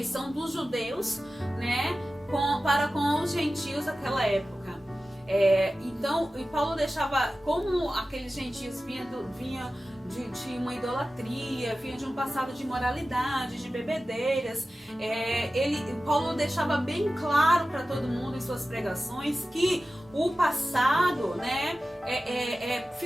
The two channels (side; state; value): both; normal; correlation 0.95